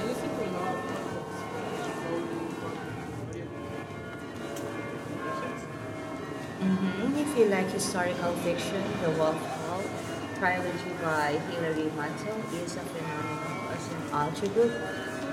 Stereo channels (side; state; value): both; identical; correlation 1.00